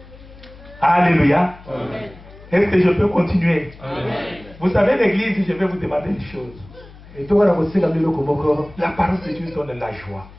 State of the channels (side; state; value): left; noise; hum, 20 dB below the sound